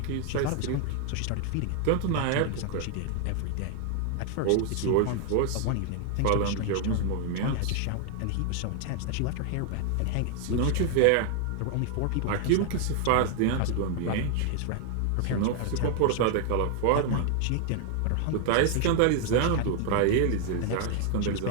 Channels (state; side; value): different; both; correlation 0.00